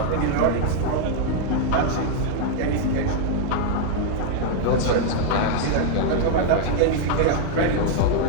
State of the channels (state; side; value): different; both; correlation 0.00